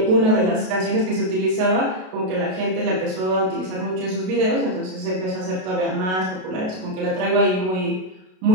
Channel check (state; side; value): late; left; 32 ms